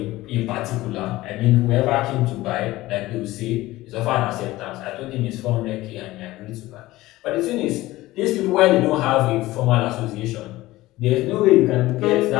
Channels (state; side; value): quieter; right; 17.8 dB